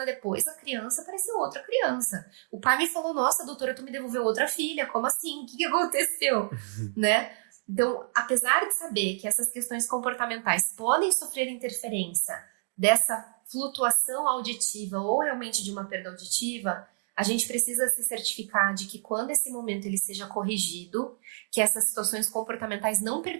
depois, a criança pareceu outra criança. O pai me falou, nossa, doutora, tu me devolveu outra filha, como assim? O que aconteceu? Né? Então, apesar de saber que essas questões comportamentais podem sofrer interferência dessa flutuação auditiva ou realmente de uma perda auditiva, a gente precisa se certificar de que quando esse momento ele seja corrigido, que essas situações comportamentais não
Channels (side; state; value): left; silent; digital silence